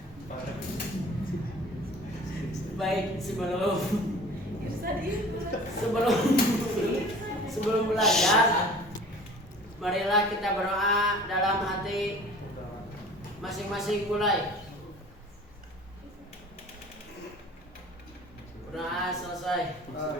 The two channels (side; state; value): both; normal; correlation 0.45